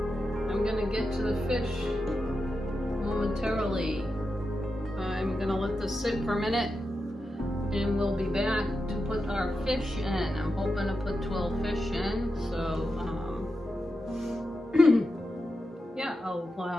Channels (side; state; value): both; normal; correlation 0.89